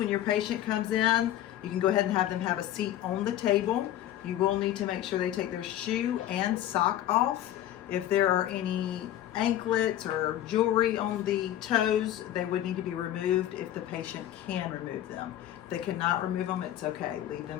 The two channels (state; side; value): quieter; right; 12.5 dB